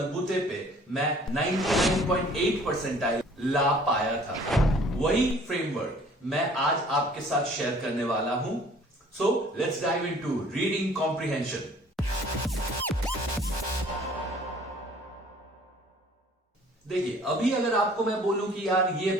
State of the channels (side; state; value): both; normal; correlation 0.54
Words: पे मैं 99.8 परसेंटाइल ला पाया था। वही फ्रेमवर्क मैं आज आपके साथ शेयर करने वाला हूं। So let's dive into reading comprehension. देखिए, अभी अगर आपको मैं बोलूं कि यार ये